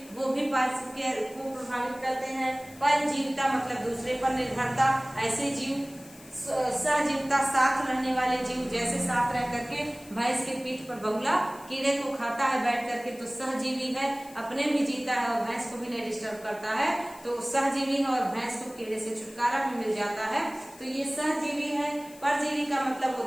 वो भी पारिस्थितिकी को प्रभावित करते हैं। परजीविता मतलब दूसरे पर निर्भरता, ऐसे जीव। सहजीविता साथ रहने वाले जीव, जैसे साथ रह करके भैंस के पीठ पर बगुला कीड़े को खाता है बैठ करके, तो सहजीवी है, अपने भी जीता है और भैंस को भी नहीं डिस्टर्ब करता है, तो सहजीवी है और भैंस को कीड़े से छुटकारा भी मिल जाता है, तो ये सहजीवी है। परजीवी का मतलब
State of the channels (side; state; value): left; noise; hiss, 21 dB below the sound